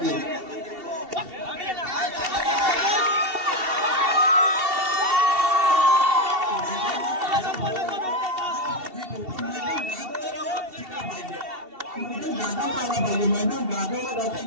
मैदान गाजवलं जाते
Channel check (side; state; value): left; late; 2.7 ms